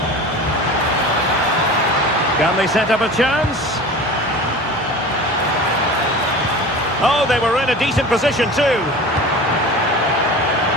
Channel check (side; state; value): both; normal; correlation 0.36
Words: Can they set up a chance? Oh, they were in a decent position too.